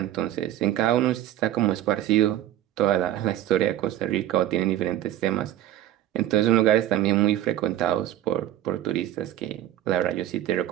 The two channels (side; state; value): left; quieter; 12.9 dB